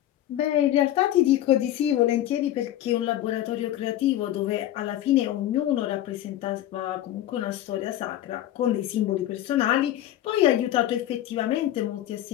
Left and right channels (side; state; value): right; quieter; 13.0 dB